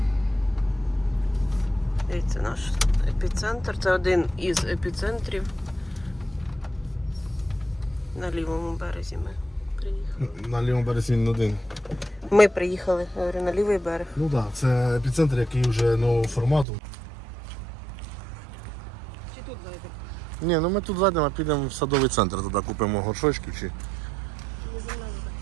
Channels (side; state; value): left; drops out; at 16.7 s